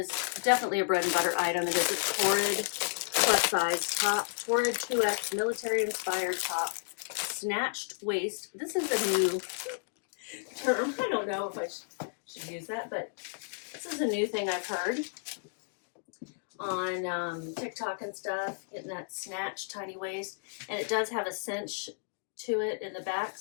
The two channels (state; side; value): silent; right; digital silence